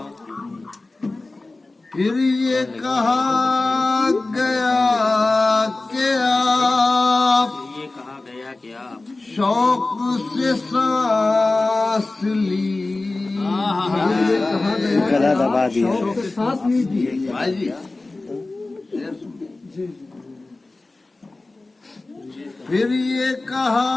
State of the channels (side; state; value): right; quieter; 3.2 dB